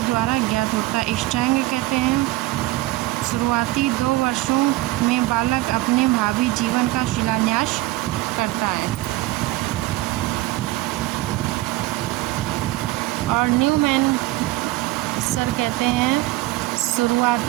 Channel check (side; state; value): left; quieter; 18.7 dB